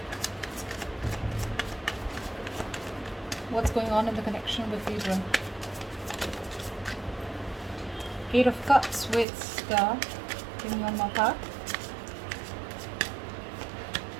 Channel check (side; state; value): left; drops out; at 9.2 s